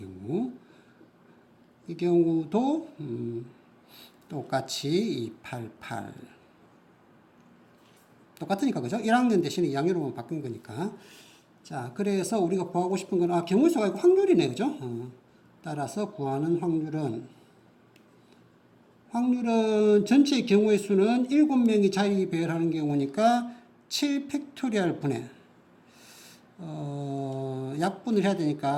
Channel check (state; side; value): identical; both; correlation 1.00